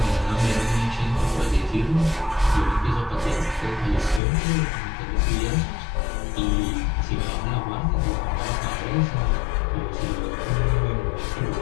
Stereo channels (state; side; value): drops out; right; at 4.2 s